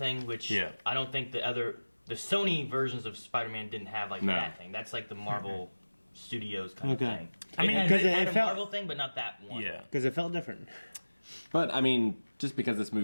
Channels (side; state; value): both; inverted; correlation -1.00